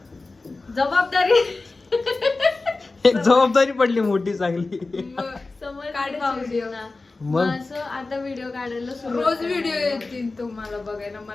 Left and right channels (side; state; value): right; quieter; 3.5 dB